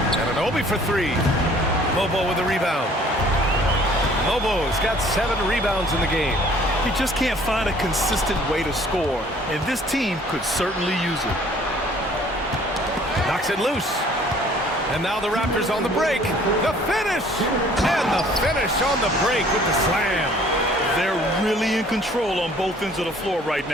Anunoby for 3. Lobo with a rebound. Lobo's got 7 rebounds in the game. He just can't find a consistent way to score, and this team could certainly use it. Knocks it loose. And now the Raptors on the break. The finish! And the finish on the break with the slam. They're really in control on both ends of the floor right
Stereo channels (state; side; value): normal; both; correlation 0.55